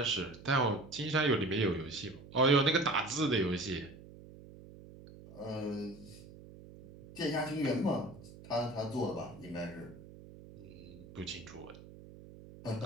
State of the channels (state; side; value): noise; right; hum, 18 dB below the sound